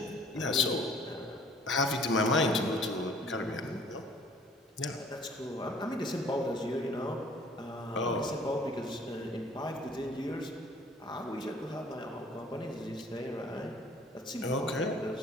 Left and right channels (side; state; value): both; normal; correlation 0.54